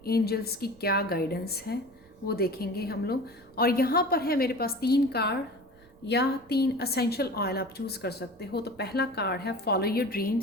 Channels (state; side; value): noise; right; rumble, 28 dB below the sound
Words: एंजल्स की क्या गाइडेंस है वो देखेंगे हम लोग। और यहाँ पर है मेरे पास 3 कार्ड या 3 असेंशियल ऑयल आप चूज़ कर सकते हो। तो पहला कार्ड है फॉलो योर